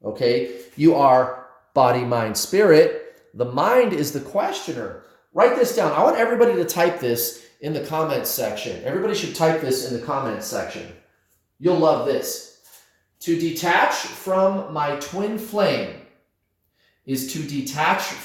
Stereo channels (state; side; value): identical; both; correlation 1.00